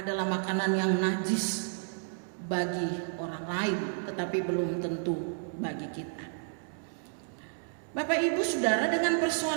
makanan yang najis bagi orang lain, tetapi belum tentu bagi kita. Bapak Ibu Saudara, dengan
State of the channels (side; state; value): left; silent; digital silence